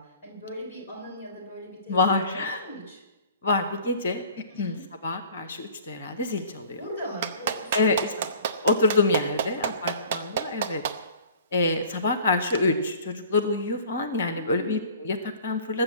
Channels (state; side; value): inverted; both; correlation -0.47